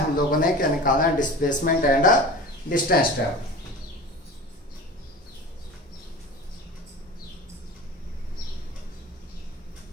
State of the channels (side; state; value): both; normal; correlation 0.35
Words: लोगों ने क्या निकाला है, डिस्प्लेसमेंट एंड डिस्टेंस ट्रेवल।